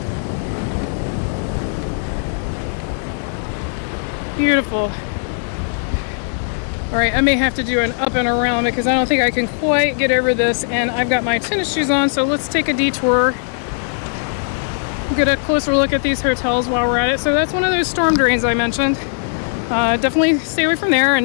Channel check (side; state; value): right; silent; digital silence